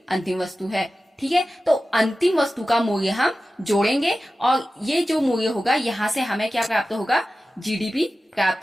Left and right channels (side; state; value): both; normal; correlation 0.95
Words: अंतिम वस्तु है, ठीक है। तो अंतिम वस्तु का मूल्य हम जोड़ेंगे और ये जो मूल्य होगा यहाँ से हमें क्या प्राप्त होगा? जीडीपी